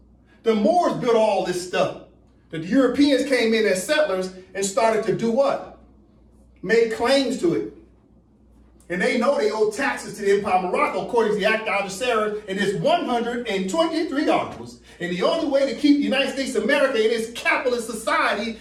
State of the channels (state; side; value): identical; both; correlation 1.00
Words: The Moors built all this stuff. The Europeans came in as settlers and started to do what? Make claims to it. And they know they owe taxes to the Empire of Morocco according to the Act of Algeciras and its 123 articles. And the only way to keep the United States of America in its capitalist society